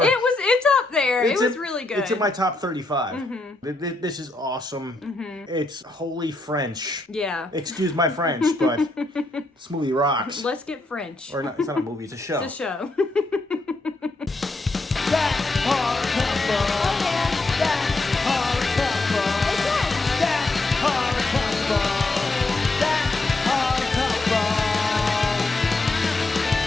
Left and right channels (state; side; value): quieter; right; 3.0 dB